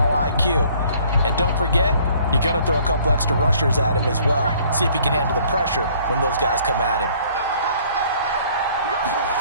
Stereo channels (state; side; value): inverted; both; correlation -0.58